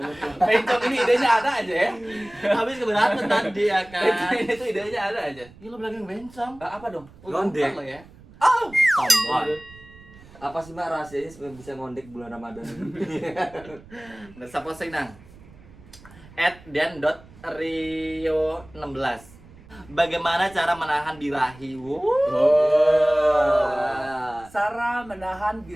Pencok ini idenya ada aja ya. Habis keberatan tadi ya kan. Ini tuh idenya ada aja. Ini lo bilang bencong. Apa dong? Ngondek. Lo ya. Oh, Tombol. Apa sih Mak rahasianya supaya bisa ngondek bulan Ramadan ini? Dan siapa sih nang? @dan.rio16. Bagaimana cara menahan birahi? Sarah menahan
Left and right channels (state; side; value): noise; right; rumble, 22 dB below the sound